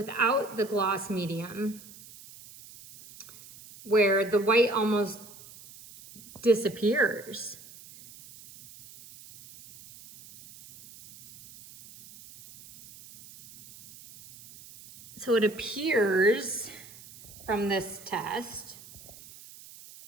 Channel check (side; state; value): right; noise; hiss, 19 dB below the sound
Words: the gloss medium, where the white almost disappears. So it appears from this test